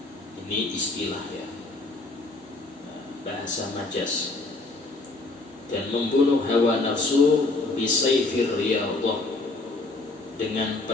Ini istilah ya, bahasa majas. Dan membunuh hawa nafsu bisayfir riyadhah, dengan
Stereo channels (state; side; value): quieter; right; 3.2 dB